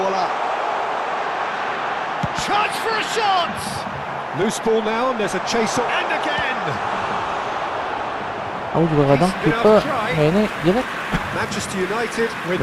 Chance for a shot! Loose ball now, and there's a chase on. And again! Aku juga kadang kiper mainnya jelek. Manchester United with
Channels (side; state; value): both; identical; correlation 1.00